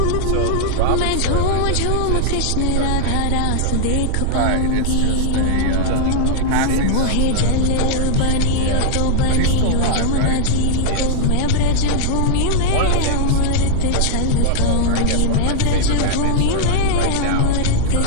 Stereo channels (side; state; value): both; different; correlation -0.01